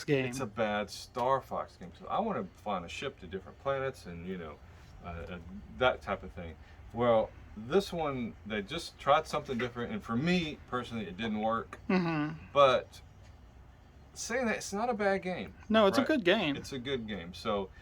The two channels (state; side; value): identical; both; correlation 1.00